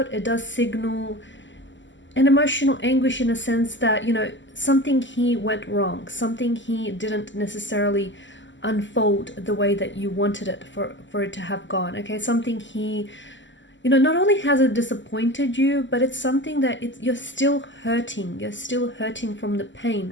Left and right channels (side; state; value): right; late; 0.54 ms